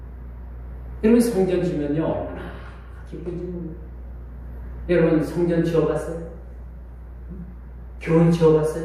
여러분, 성전 지면요 얼마나 기쁜지 모릅니다. 여러분, 성전 지어봤어요? 교회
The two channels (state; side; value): identical; both; correlation 1.00